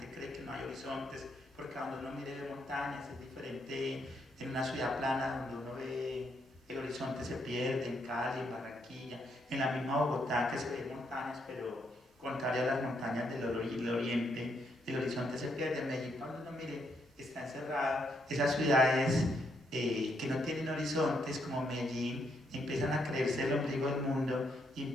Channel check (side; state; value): both; normal; correlation 0.76